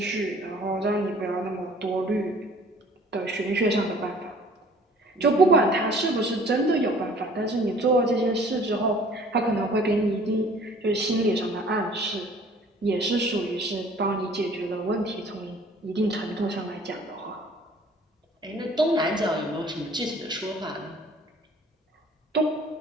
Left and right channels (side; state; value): both; normal; correlation 0.52